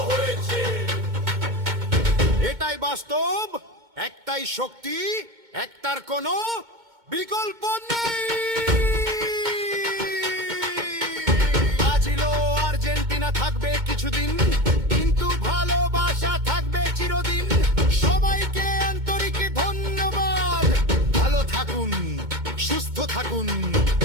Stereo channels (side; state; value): left; late; 2.2 ms